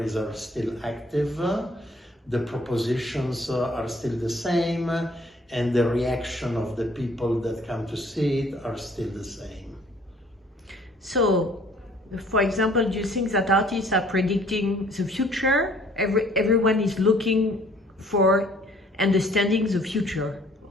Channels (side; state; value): both; normal; correlation 0.58